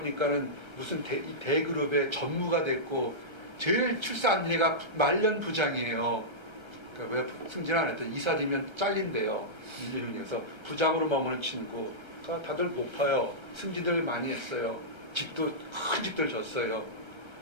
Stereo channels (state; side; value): late; left; 1.3 ms